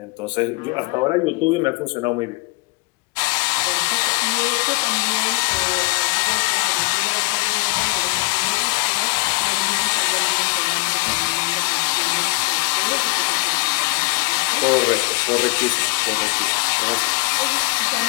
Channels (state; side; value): quieter; right; 28.6 dB